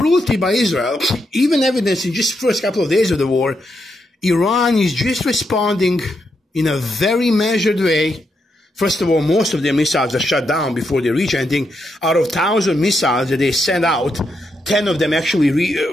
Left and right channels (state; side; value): normal; both; correlation 0.82